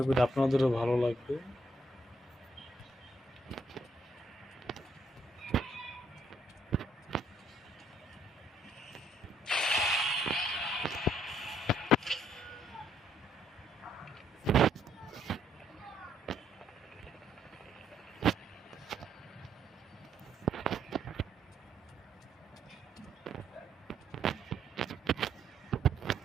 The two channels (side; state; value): both; normal; correlation 0.70